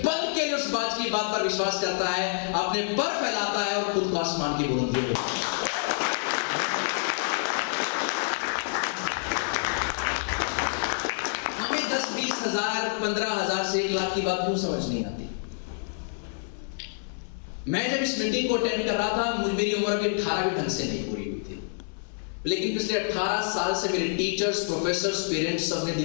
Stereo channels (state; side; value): silent; right; 60 dB below the other